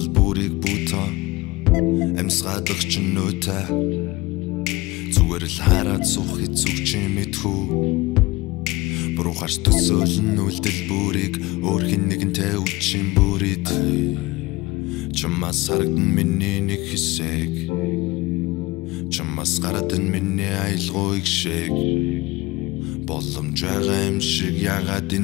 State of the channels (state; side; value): quieter; right; 21.2 dB